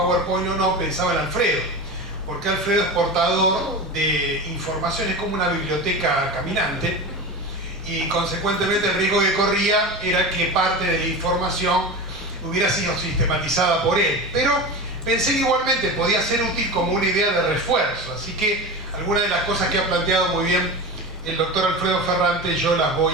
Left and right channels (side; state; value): both; normal; correlation 0.27